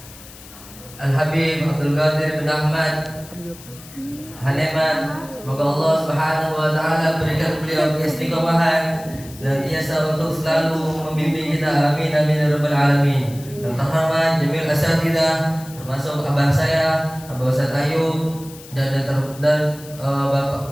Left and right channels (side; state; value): left; noise; hiss, 19 dB below the sound